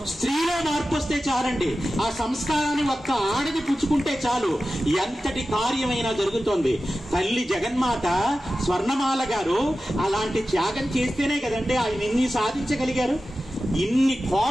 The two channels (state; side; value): normal; both; correlation 0.94